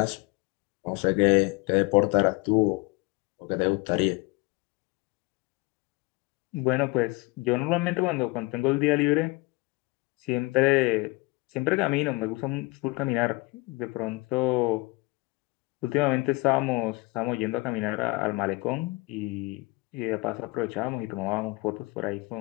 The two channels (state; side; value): quieter; right; 24.5 dB